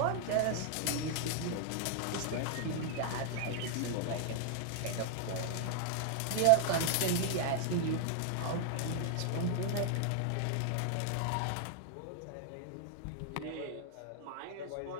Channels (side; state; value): both; different; correlation 0.00